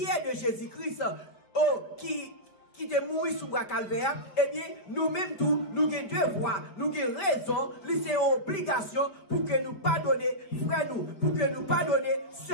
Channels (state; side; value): late; right; 5.2 ms